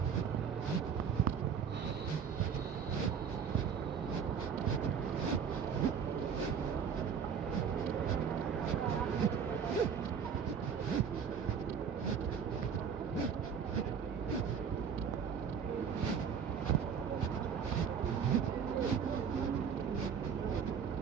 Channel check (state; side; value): quieter; left; 6.9 dB